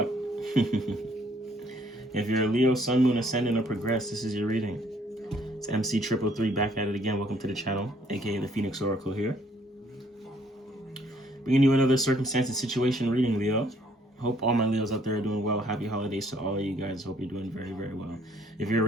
If you're a Leo, Sun, Moon, Ascendant, or Progress, this is your reading. It's MC333 back at it again. Welcome to the channel, aka the Phoenix Oracle here. Bringing you another circumstance and situation reading, Leo. Hope all my Leos out there are doing well. Happy holidays to all of you guys. Hope you're doing very, very well. If you're a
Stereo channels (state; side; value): normal; both; correlation 0.64